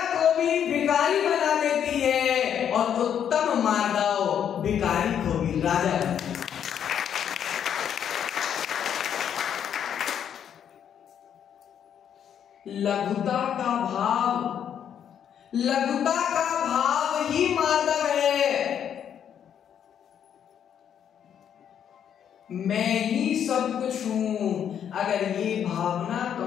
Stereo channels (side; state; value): right; quieter; 8.9 dB